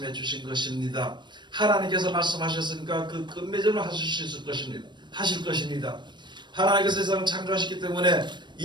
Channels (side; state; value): left; late; 0.22 ms